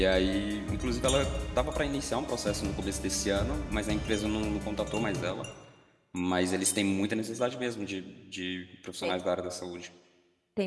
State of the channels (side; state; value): both; identical; correlation 1.00